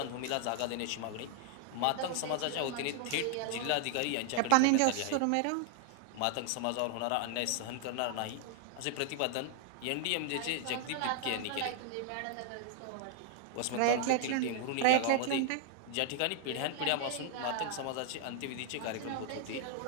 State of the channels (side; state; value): both; different; correlation 0.00